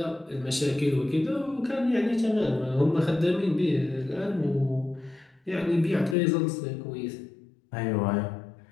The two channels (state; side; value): drops out; right; at 6.2 s